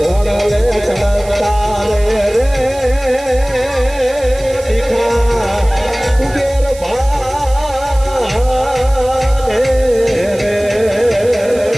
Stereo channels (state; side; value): noise; right; hiss, 18 dB below the sound